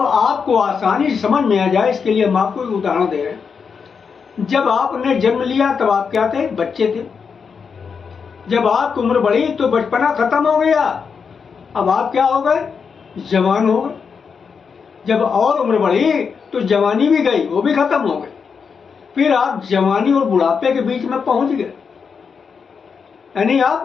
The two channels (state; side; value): quieter; right; 6.0 dB